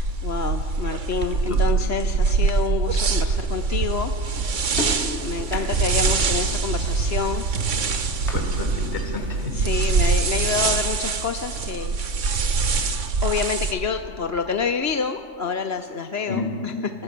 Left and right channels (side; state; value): left; late; 3.6 ms